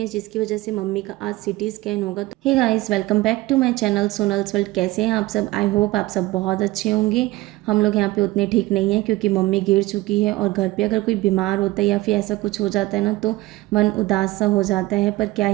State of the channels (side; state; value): left; quieter; 19.2 dB